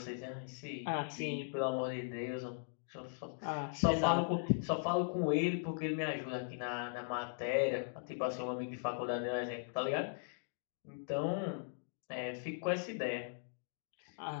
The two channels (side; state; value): right; silent; digital silence